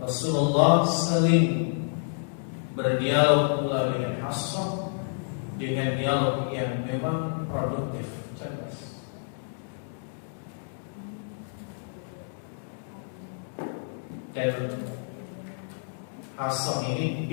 Rasulullah sering berdialog pula dengan Hafsah dengan dialog yang memang produktif, cerdas. Dan Hafsah ini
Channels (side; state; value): right; silent; digital silence